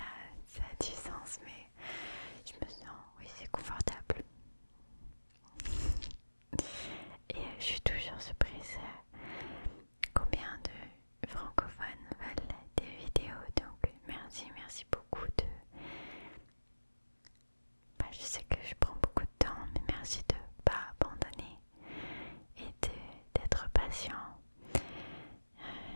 a du sens, mais je me sens, oui, c'est confortable. Et je suis toujours surprise combien de francophones veulent des vidéos. Donc merci beaucoup de... je sais que je prends beaucoup de temps, mais merci de ne pas abandonner et d'être patient.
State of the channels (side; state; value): both; inverted; correlation -1.00